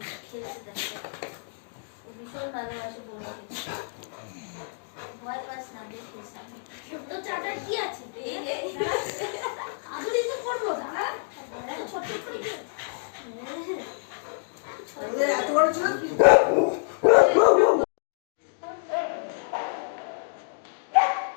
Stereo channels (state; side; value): silent; right; digital silence